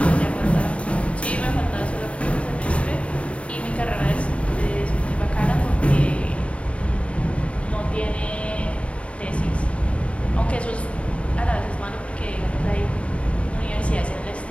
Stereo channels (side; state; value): right; late; 0.063 ms